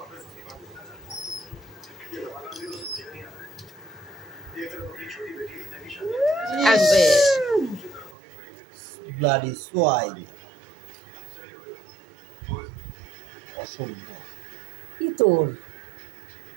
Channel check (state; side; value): drops out; left; at 8.2 s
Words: ব্লাডি সোয়াইন, অসভ্য। কি তোর